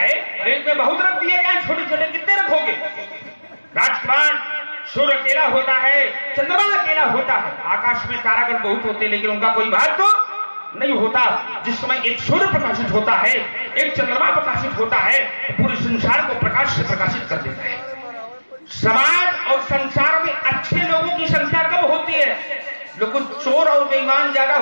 और एक में बहुत रख दिए जाए, छोटे छोटे कितने रखोगे? राजकुमार, सूर्य अकेला होता है, चंद्रमा अकेला होता है, आकाश में तारागण बहुत होते हैं, लेकिन उनका कोई महत्व तो नहीं होता। जिस समय एक सूर्य प्रकाशित होता है, एक चंद्रमा प्रकाशित होता है, पूरे संसार को प्रकाश से प्रकाशित कर देता है। समाज और संसार में अच्छे लोगों की संख्या कम होती है, लेकिन चोर और बेईमान ज्यादा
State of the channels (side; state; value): both; inverted; correlation -1.00